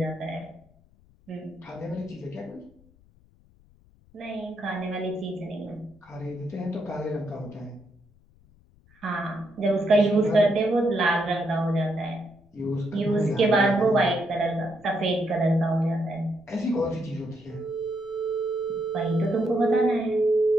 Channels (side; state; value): left; noise; rumble, 30 dB below the sound